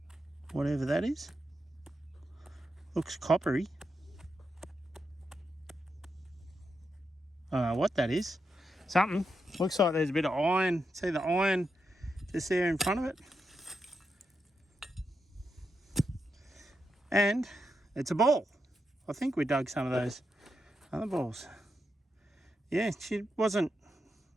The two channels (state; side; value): normal; both; correlation 0.85